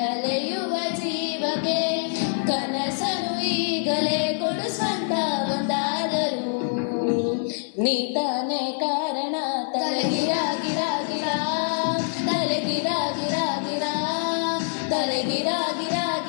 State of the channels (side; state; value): right; silent; digital silence